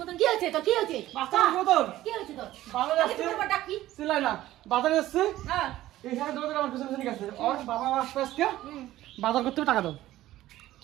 মতন কি হয়েছে? তো কি হয়েছে? বাচ্চা মতন কি হয়েছে তোর? বাজারে আগে আসছে, তোমার ডাক কি? চিল্লাই না। বাজারে আসছে, হ্যাঁ, এই সাথে দৌড়ে আমার পিছনে পিছনে গেছে। ওর বাবা আসবে আজকে, বাজার করতে হবে, টাকা দাও।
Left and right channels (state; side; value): quieter; left; 15.0 dB